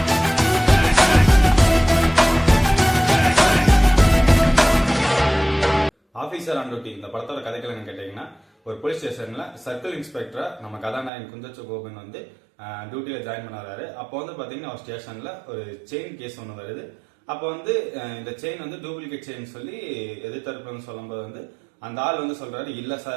ஆபீசர் ஆன் டியூட்டி இந்த படத்தோட கதைகள் என்ன கேட்டீங்கன்னா, ஒரு போலீஸ் ஸ்டேஷன்ல சர்க்கிள் இன்ஸ்பெக்டரா நம்ம கதாநாயகன் குஞ்சச்சோ கோபன் வந்து டியூட்டியில ஜாயின் பண்ண வராரு. அப்போ வந்து பாத்தீங்கன்னா ஒரு ஸ்டேஷன்ல ஒரு செயின் கேஸ் ஒன்று வருது. அப்போ வந்து இந்த செயின் வந்து டூப்ளிகேட் செயின் சொல்லி எதிர்த்தரப்புன்னு சொல்லும்போது வந்து அந்த ஆள் வந்து சொல்றாரு, இல்ல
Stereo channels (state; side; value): drops out; left; at 11.1 s